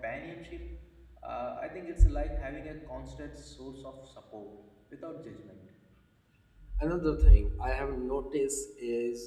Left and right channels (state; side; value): identical; both; correlation 1.00